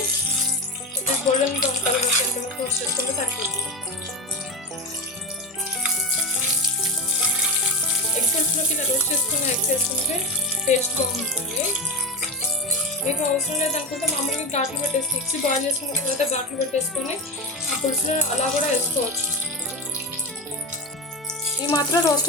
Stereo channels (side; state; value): both; normal; correlation 0.17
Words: కొద్దిగా గోల్డెన్ బ్రౌన్ కలర్ వచ్చేంతవరకు రోస్ట్ చేసుకుంటే సరిపోతుంది. ఎగ్ పులుసులోకి ఇలా రోస్ట్ చేసుకున్న ఎగ్స్ వేసుకుంటే టేస్ట్ బాగుంటుంది. మీకు అవసరం లేదనుకుంటే మామూలుగా ఘాట్లు పెట్టేసి ఎగ్స్ బాయిల్ చేసుకున్న తర్వాత ఘాట్లు పెట్టేసుకొని ఆ పులుసులో అలా కూడా వేసుకోవచ్చు. ఈ మాత్రం